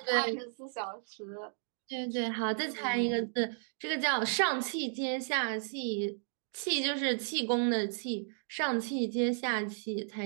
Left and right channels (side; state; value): left; silent; digital silence